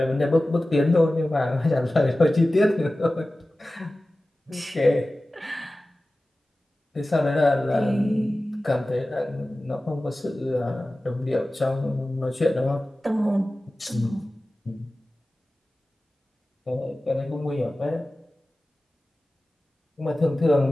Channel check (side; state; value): both; normal; correlation 0.96